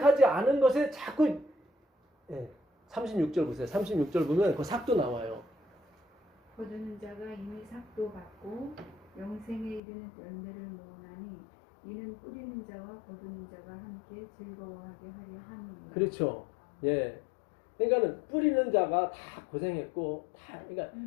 않은 것에 자꾸 36절 보세요. 36절 보면 그 삭도 나와요. 거두는 자가 이미 삭도 받고 영생에 이르는 열매를 모으나니 이는 뿌리는 자와 거두는 자가 함께 즐거워하게 하려 함이니라. 그렇죠. 예. 그러니까는 뿌리는 자가 다 고생했고 그러니까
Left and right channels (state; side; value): drops out; right; at 9.8 s